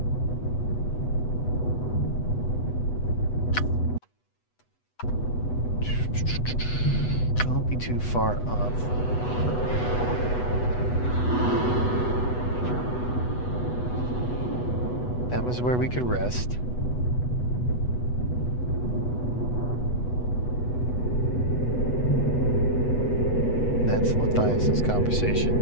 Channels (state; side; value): late; right; 8.1 ms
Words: Don't be too far up. That was where we could rest. That's Matthias's